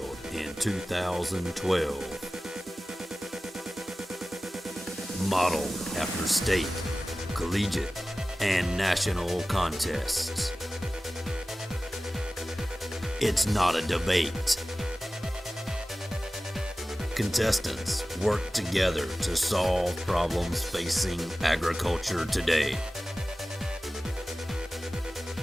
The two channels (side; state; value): both; normal; correlation 0.96